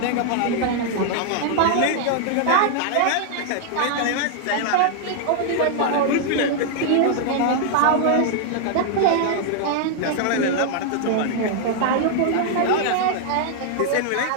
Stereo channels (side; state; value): both; different; correlation -0.01